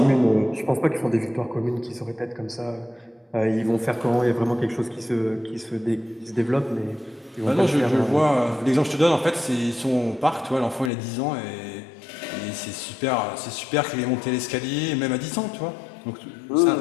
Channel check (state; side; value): drops out; right; at 10.9 s